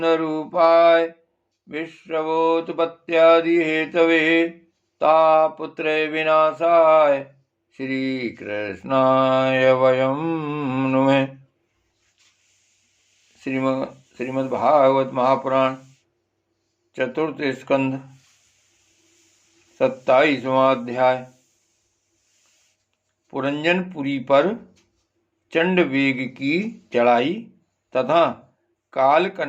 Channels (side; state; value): both; identical; correlation 1.00